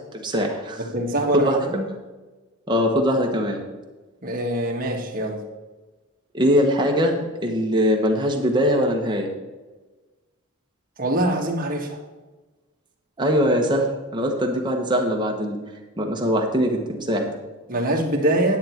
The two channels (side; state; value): both; normal; correlation 0.32